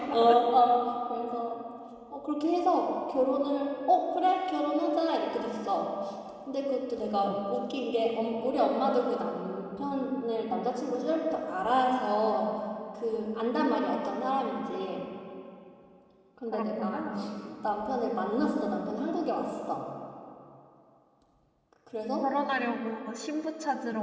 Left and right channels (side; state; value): both; identical; correlation 1.00